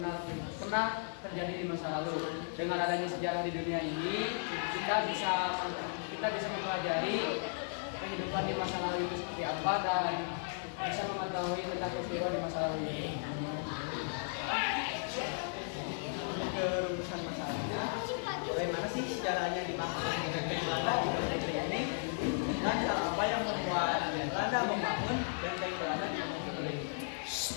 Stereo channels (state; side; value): silent; right; digital silence